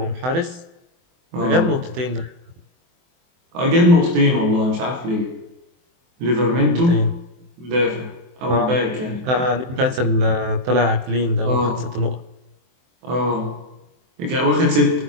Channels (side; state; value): left; late; 23 ms